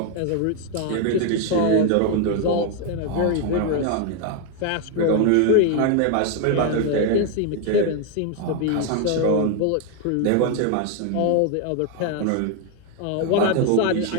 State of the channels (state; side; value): different; both; correlation 0.01